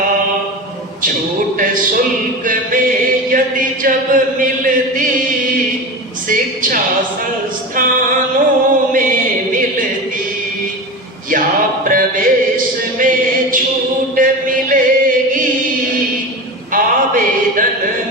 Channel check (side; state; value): both; normal; correlation 0.26